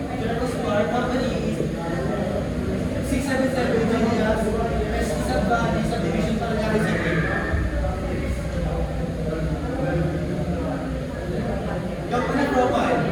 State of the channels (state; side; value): identical; both; correlation 1.00